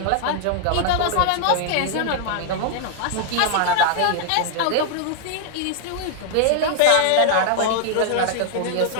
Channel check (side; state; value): both; different; correlation 0.00